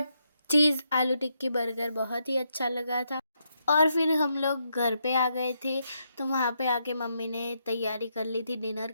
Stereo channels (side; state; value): both; inverted; correlation -0.80